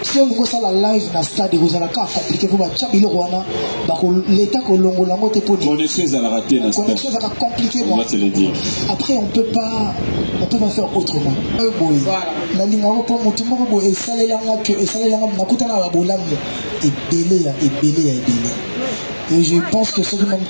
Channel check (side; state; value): both; inverted; correlation -1.00